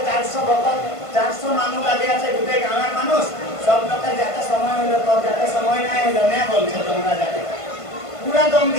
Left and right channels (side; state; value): right; late; 1.5 ms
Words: 400 ভক্ত 400 মানুষ লাগে আছে গোটে গাঁয়ের মানুষ সব লোকের যাতে সময় হলো তোর যাতে সময় নাই হলো না বলছে তোমরা যাতে पूरा दम